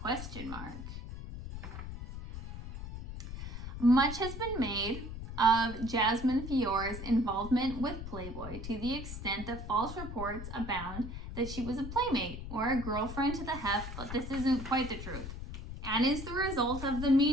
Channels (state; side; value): noise; left; rumble, 8 dB below the sound